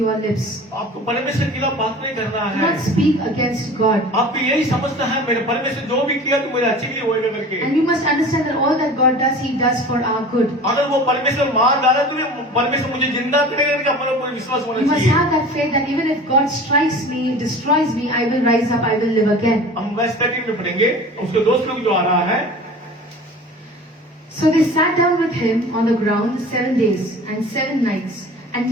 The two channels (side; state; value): both; normal; correlation 0.40